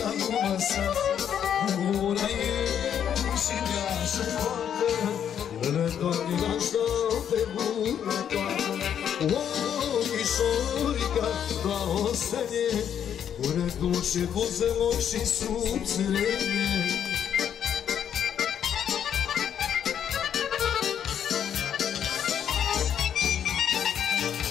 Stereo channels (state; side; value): quieter; right; 9.0 dB